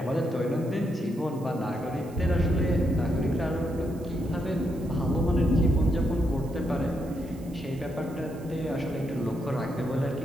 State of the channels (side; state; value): right; noise; hiss, 25 dB below the sound